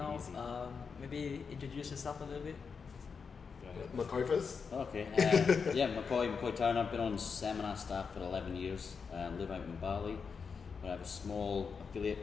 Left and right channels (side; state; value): right; quieter; 5.6 dB